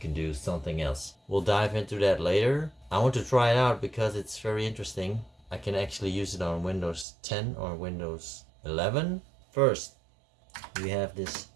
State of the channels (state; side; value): drops out; left; at 7.1 s